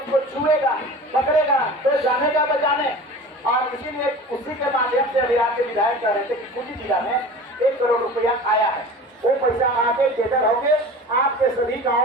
छुएगा, पकड़ेगा, तो जानेगा बचाने। और इसीलिए उसी के माध्यम से अभी आपके विधायक कह रहे थे कि कुछ जिला में 1 करोड़ रुपया आया है। वो पैसा आके टेंडर होके आपके सभी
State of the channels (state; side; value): normal; both; correlation 0.38